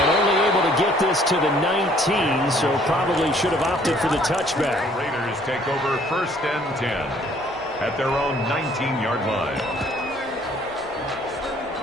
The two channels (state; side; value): normal; both; correlation 0.60